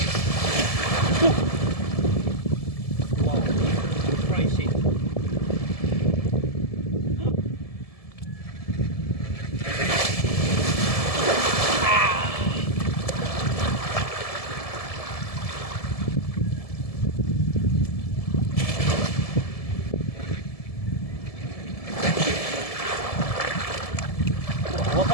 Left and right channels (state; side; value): late; right; 1.7 ms